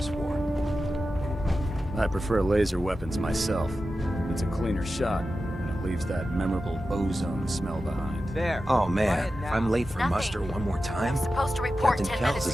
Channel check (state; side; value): normal; both; correlation 0.92